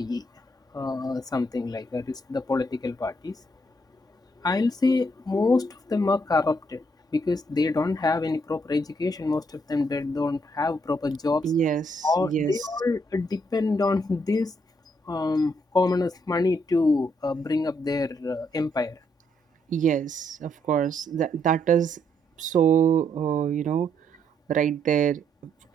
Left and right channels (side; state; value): both; normal; correlation 0.73